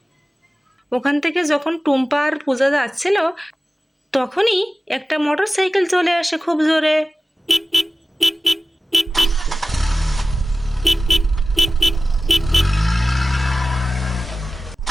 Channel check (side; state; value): both; normal; correlation 0.96